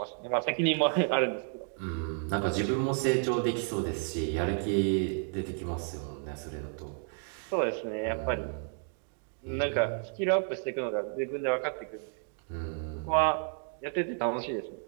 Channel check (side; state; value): left; silent; 55 dB below the other